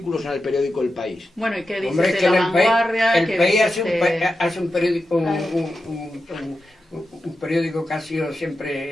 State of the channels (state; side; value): normal; both; correlation 0.90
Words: en el periódico El País. Bueno, ¿y qué dices Hombre, de que la vanguardia? el ¿Qué país dices hace un periódico, Claro. un periódico que ha sido